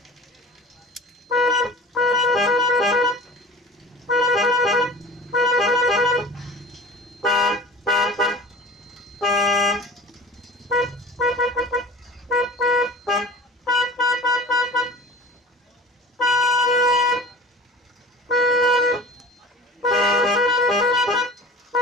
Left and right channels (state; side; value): normal; both; correlation 0.40